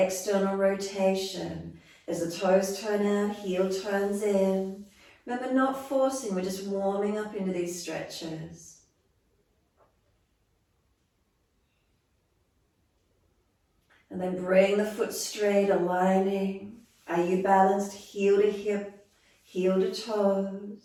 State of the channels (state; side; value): identical; both; correlation 1.00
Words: rotation. As the toes turn out, heel turns in. Remember, not forcing, we're just warming up into these stretches. And then bring the foot straight, aligning. Are you balanced? Heel to hip, heel to